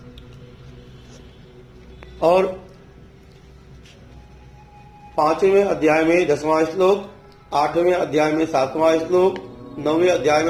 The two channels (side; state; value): both; identical; correlation 1.00